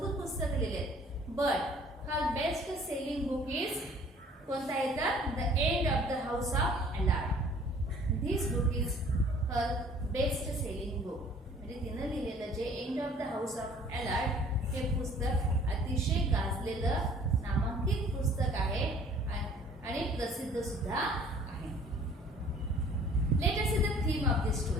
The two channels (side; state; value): both; normal; correlation 0.53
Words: पुस्तकं लिहिली आहेत. But her best selling book is कोणता येतं? The end of the house of Alard. This book is her best selling book. म्हणजे तिनं लिहिलेलं जे end of the house of Alard हे पुस्तक अतिशय गाजलेलं नामांकित पुस्तक आहे आणि प्रसिद्ध सुद्धा आहे. Let us see the theme of this